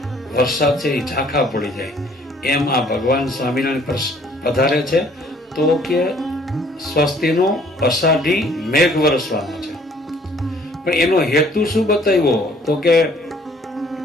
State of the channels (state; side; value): normal; both; correlation 0.59